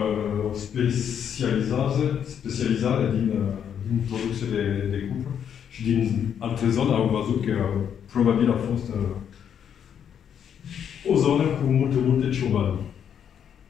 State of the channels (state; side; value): quieter; right; 8.5 dB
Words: specializare din producție de cupru și din alte zone au văzut că probabil a fost o zonă cu multe ciobani.